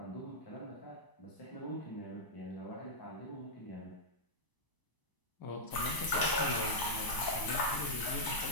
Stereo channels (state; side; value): late; right; 1.0 ms